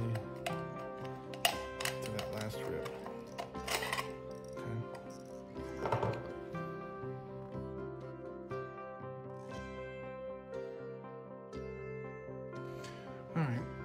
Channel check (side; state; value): both; identical; correlation 1.00